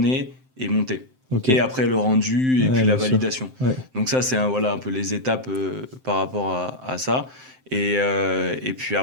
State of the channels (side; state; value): left; late; 7.7 ms